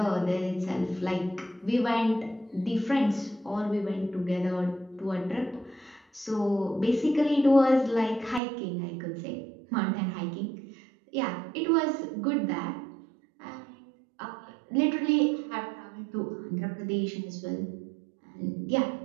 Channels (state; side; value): drops out; left; at 8.4 s